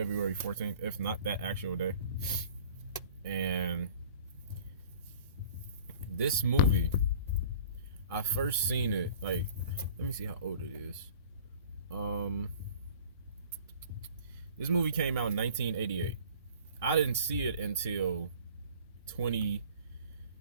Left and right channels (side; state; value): both; inverted; correlation -0.47